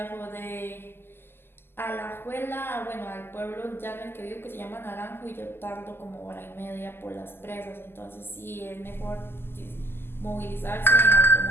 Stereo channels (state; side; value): late; right; 0.11 ms